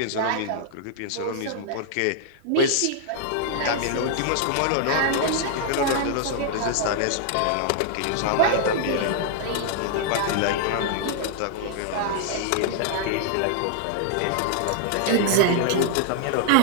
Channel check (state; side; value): different; both; correlation -0.01